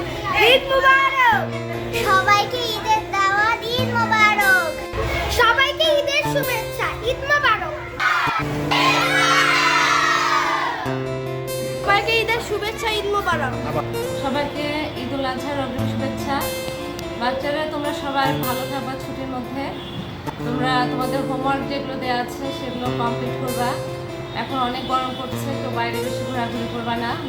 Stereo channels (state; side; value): identical; both; correlation 1.00